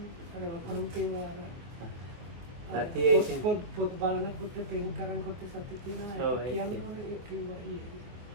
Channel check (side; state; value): left; late; 23 ms